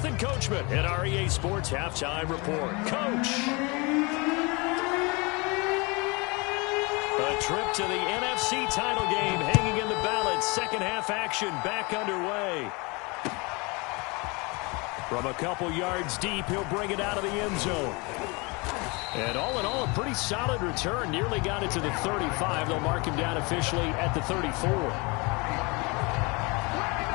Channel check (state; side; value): quieter; right; 27.8 dB